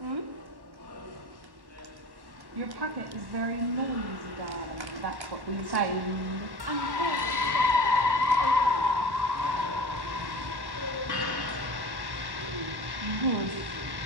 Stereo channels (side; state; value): left; late; 1.1 ms